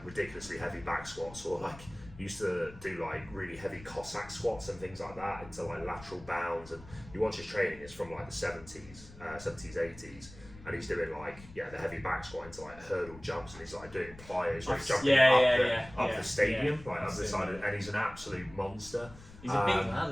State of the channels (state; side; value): noise; left; rumble, 18 dB below the sound